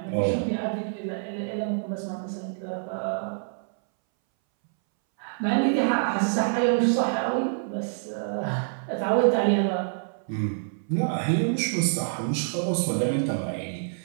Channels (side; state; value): left; silent; 60 dB below the other